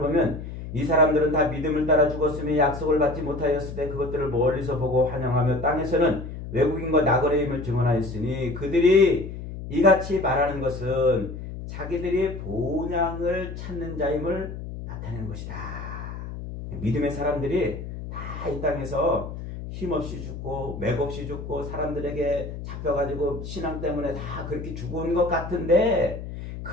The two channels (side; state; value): left; noise; hum, 9 dB below the sound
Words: 이 사람들은 다 믿음을 따라 죽었으며 약속을 받지 못하였을 때 그것들을 멀리서 보고 환영하며 땅에서는 외국인과 나그네임을 증언하였으니 그들이 이같이 말하는 것은 자기들이 본향을 찾는 자임을 나타내는 것이다. 믿음의 사람들이 다 이 땅에서 힘없이 죽고 맥없이 죽고 사람들에게 잡혀가지고 신앙 때문에 다 그렇게 죽은 것 같은데